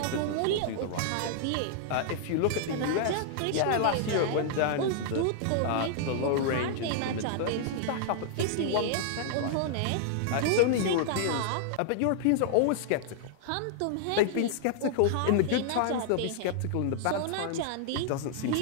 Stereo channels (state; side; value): different; both; correlation -0.01